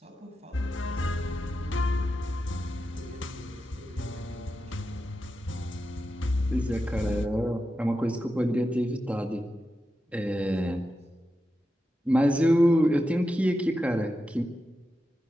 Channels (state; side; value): normal; both; correlation 0.90